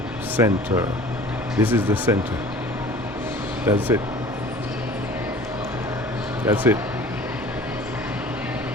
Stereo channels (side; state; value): both; normal; correlation 0.45